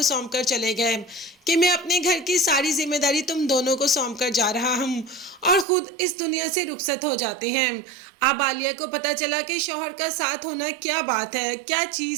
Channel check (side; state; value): left; drops out; at 5.7 s